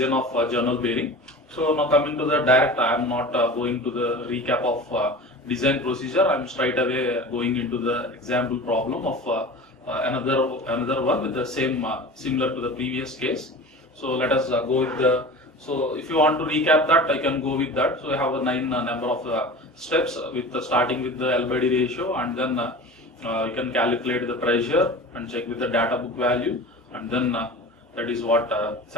of journal bearing. So now coming to the direct, I am not going to the recap of design procedure. I am straight away going into the example problem of another one with the same similar to the previous case. So let us go with the. So if you want to recap that, I can go with that. So I have a 9 number of steps with starting with the L/D ratio, and then you can calculate the pressure and check with the data book value, and then that is what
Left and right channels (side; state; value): both; normal; correlation 0.35